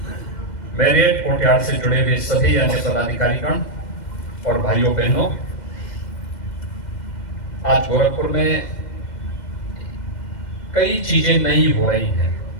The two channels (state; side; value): late; right; 2.1 ms